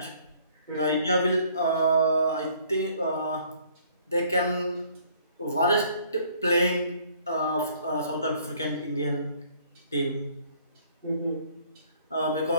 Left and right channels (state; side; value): inverted; both; correlation -0.60